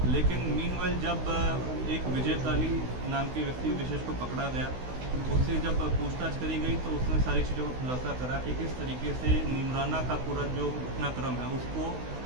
लेकिन मीनवाइल जब एक विजय काली नाम के व्यक्ति विशेष को पकड़ा गया, उससे जब पूछताछ करी गई तो उसने सारी चीज़ों को खुलासा करा कि किस तरीके से नीमराना का पूरा जो घटनाक्रम है उसको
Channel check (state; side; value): late; left; 16 ms